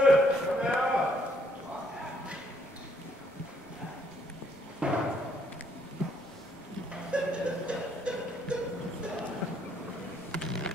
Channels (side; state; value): both; normal; correlation 0.69